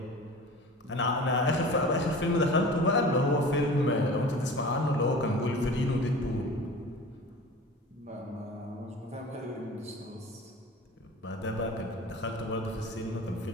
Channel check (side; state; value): both; normal; correlation 0.38